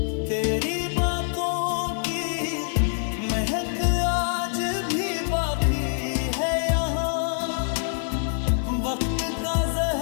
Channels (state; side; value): silent; right; digital silence